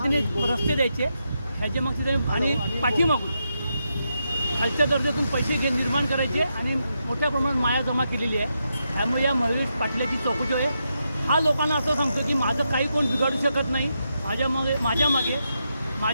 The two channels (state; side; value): inverted; both; correlation -0.84